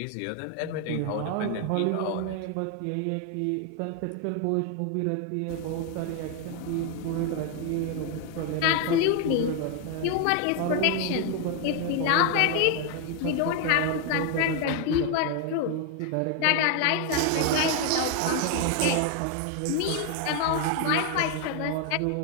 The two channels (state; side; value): different; both; correlation 0.01